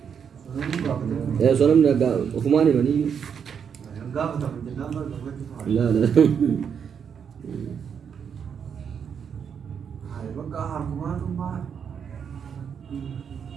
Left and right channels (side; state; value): left; quieter; 7.3 dB